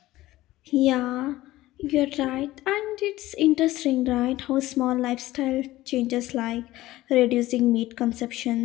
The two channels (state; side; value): quieter; right; 16.6 dB